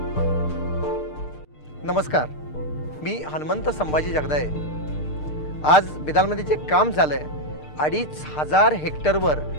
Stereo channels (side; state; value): right; late; 6.6 ms